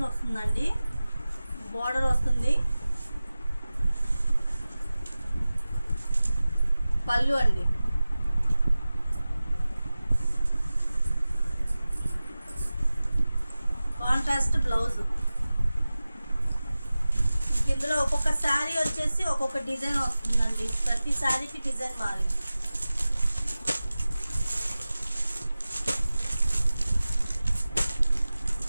వస్తుందండి. బార్డర్ వస్తుంది, పళ్ళు అండి. Contrast blouse. ఇందులో ఒక్కొక్క శారీ వచ్చేసి ఒక్కొక్క డిజైన్ వస్తుందండి. ప్రతి శారీకి డిజైన్ మారింది.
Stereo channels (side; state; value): both; inverted; correlation -0.96